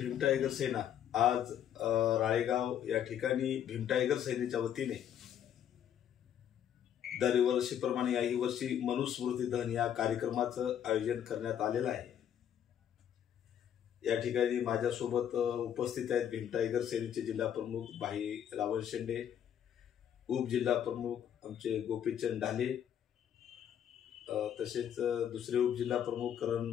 टायगर सेना आज राळेगाव या ठिकाणी भीम टायगर सेनेच्या वतीने दरवर्षीप्रमाणे याही वर्षी मनुस्मृती दहन या कार्यक्रमाचं आयोजन करण्यात आलेलं आहे। या ठिकाणी माझ्यासोबत उपस्थित आहेत भीम टायगर सेनेचे जिल्हा प्रमुख भाई रावण शेंडे, उपजिल्हा प्रमुख आमचे गोपीचंद ढाले, तसेच दुसरे उपजिल्हा प्रमुख करण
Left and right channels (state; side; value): quieter; right; 9.7 dB